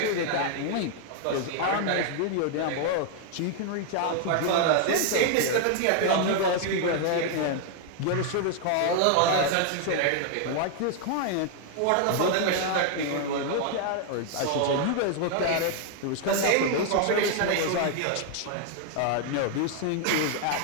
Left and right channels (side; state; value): both; different; correlation 0.00